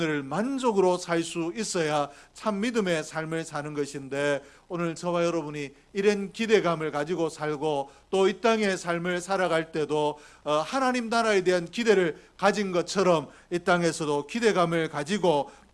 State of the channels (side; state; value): both; identical; correlation 1.00